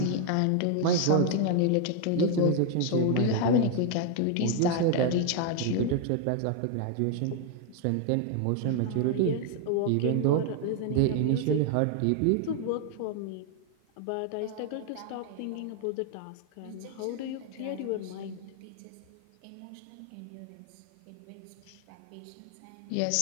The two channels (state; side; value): different; both; correlation 0.00